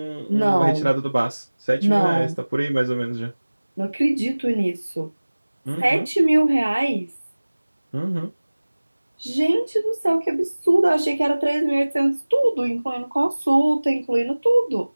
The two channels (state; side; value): inverted; both; correlation -1.00